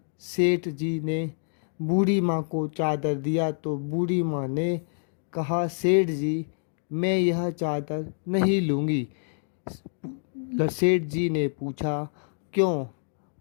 सेठ जी ने बूढ़ी माँ को चादर दिया तो बूढ़ी माँ ने कहा, सेठ जी, मैं यह चादर नहीं लूँगी। सेठ जी ने पूछा, क्यों?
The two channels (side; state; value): right; silent; digital silence